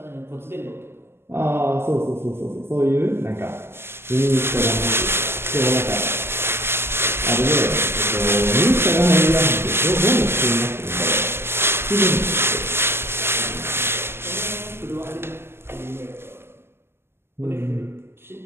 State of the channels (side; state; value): left; late; 0.12 ms